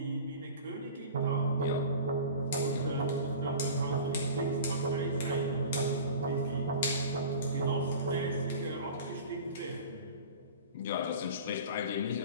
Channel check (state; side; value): inverted; both; correlation -0.38